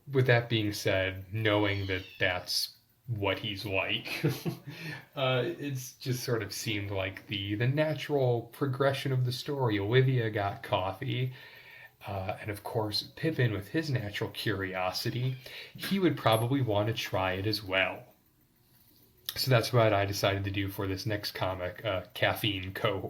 with that being said, knowing that that's what he's like, it's just sort of seemed like the natural progression of the story. Olivia got coffee. And of course, Pippin, with his natural curiosity, he would probably want to try it as well. So that's what I decided to do for this next comic, coffee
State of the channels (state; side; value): identical; both; correlation 1.00